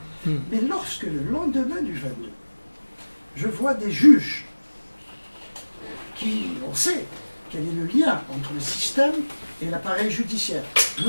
Mais lorsque le lendemain du 22, je vois des juges qui... On sait quel est le lien entre le système et l'appareil judiciaire,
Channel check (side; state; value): both; inverted; correlation -1.00